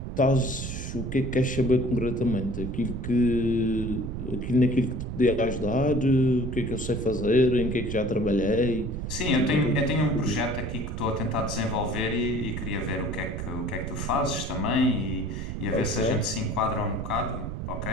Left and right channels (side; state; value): right; noise; rumble, 5 dB below the sound